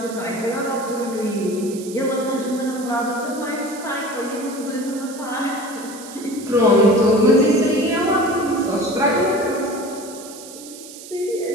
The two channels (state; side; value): noise; right; hiss, 15 dB below the sound